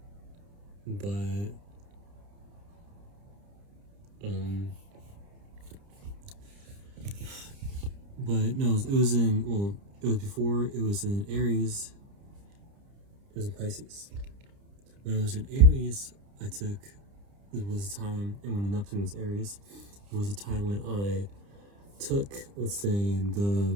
but no, it was before it was in Aries. It was in Pisces. When it was in Aries, it was a time, and when Neptune was Aries, it was a time when I took, let's say,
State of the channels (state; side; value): late; left; 30 ms